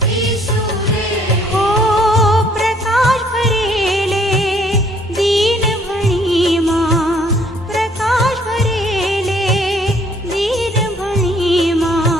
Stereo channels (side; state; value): both; normal; correlation 0.62